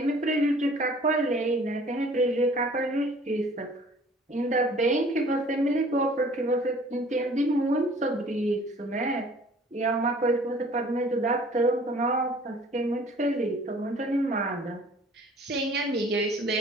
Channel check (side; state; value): both; normal; correlation 0.52